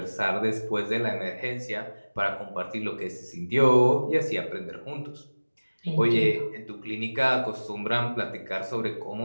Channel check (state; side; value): inverted; both; correlation -1.00